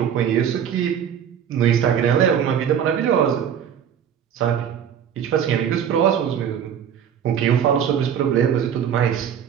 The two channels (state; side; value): quieter; left; 8.7 dB